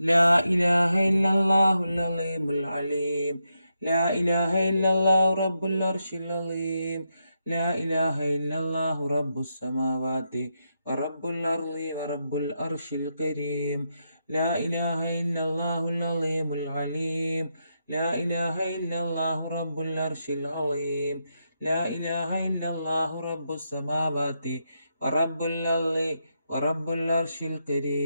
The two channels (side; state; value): both; inverted; correlation -0.84